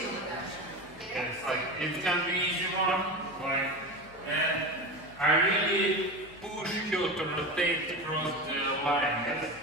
Yes, like it can be easy one, like, and I really push her to rotate across the line. Yes?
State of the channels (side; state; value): left; noise; hum, 24 dB below the sound